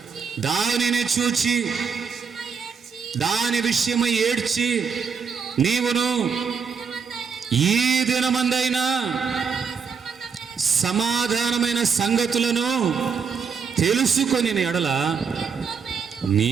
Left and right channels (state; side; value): quieter; left; 6.0 dB